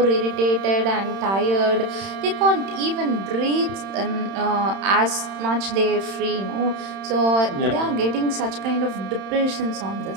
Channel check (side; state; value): left; late; 31 ms